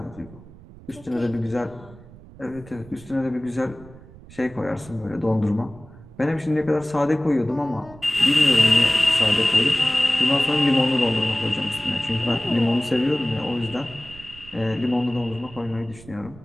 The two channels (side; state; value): right; noise; rumble, 20 dB below the sound